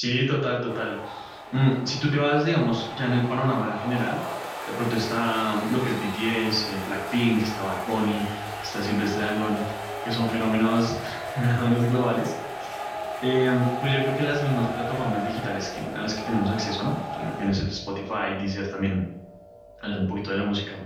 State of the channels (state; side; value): identical; both; correlation 1.00